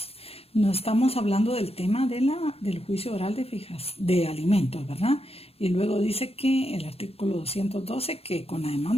No estamos hablando del tema del juicio oral de alimentos, ¿verdad? Y luego dice que el artículo 212 que con la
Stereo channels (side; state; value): right; late; 0.29 ms